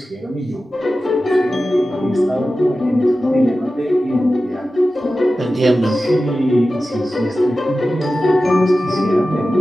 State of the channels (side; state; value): both; normal; correlation 0.94